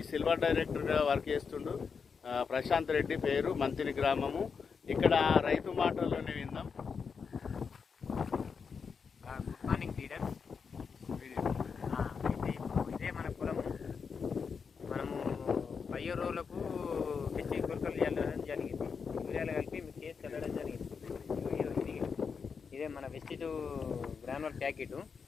సిల్వర్ డైరెక్టర్గా వర్క్ చేస్తుండు ప్రశాంత్ రెడ్డి, పేరు మంతిని గ్రామము. ఇక్కడ రైతు మాటల్లోనే విందాం. Good morning leaders. అయితే ఇదే మన పొలము. మనము 10 రోజులకు మిర్చి గుల్కలు చల్లడం జరిగింది. యూరియాలు కలిపి మిక్స్ చేసి చల్లడం జరిగింది. ఇదే మన వెస్టిజ్ గ్రానువల్ ప్యాకెట్.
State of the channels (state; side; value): quieter; right; 5.8 dB